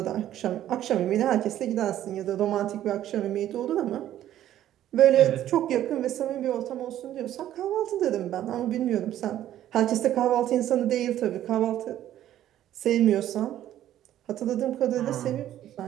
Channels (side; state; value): left; quieter; 12.2 dB